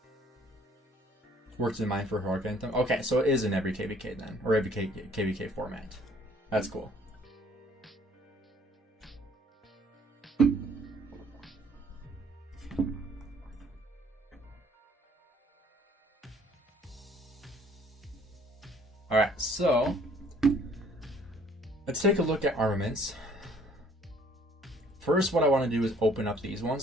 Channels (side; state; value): both; normal; correlation 0.58